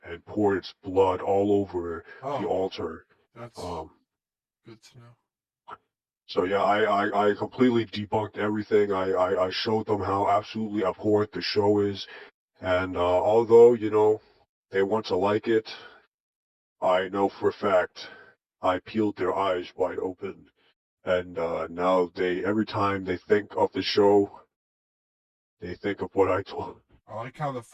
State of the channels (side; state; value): both; identical; correlation 1.00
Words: and poured its blood all over the Oh, altar. that's Um, good to know. so yeah, I completely debunked everything. I showed them how absolutely abhorrent the show is. And although, they want to like it, I know for a fact I peeled their eyes wide open. And now every time they think of the show, they think of what I told. I like how the